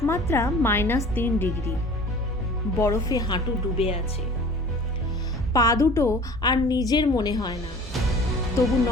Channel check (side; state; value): both; normal; correlation 0.45